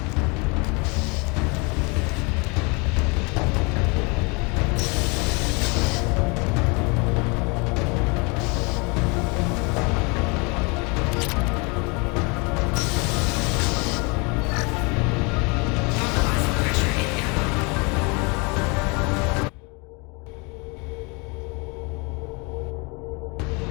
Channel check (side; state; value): right; quieter; 30.0 dB